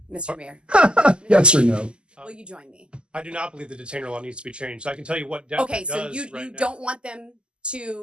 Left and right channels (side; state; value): left; late; 0.050 ms